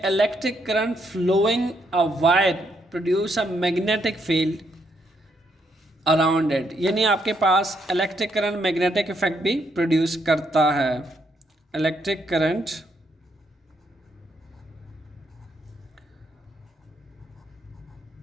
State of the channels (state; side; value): normal; both; correlation 0.75